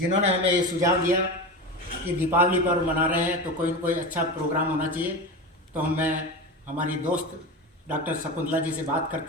हमें ये सुझाव दिया कि दीपावली पर्व मना रहे हैं तो कोई न कोई अच्छा प्रोग्राम होना चाहिए। तो मैं हमारी दोस्त डॉक्टर शकुंतला जी से बात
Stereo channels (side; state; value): both; normal; correlation 0.24